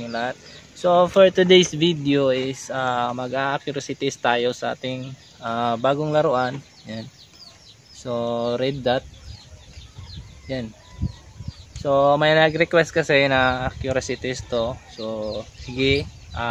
lahat. So for today's video is mag-accuracy test tayo sa ating bagong laruan. Yan. So red dot. Yan. So may nag-request kasi na accuracy test to. So sige,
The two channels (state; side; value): identical; both; correlation 1.00